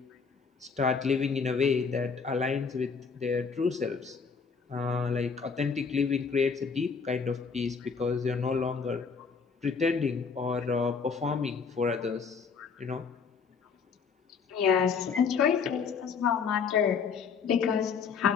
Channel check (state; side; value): quieter; right; 5.7 dB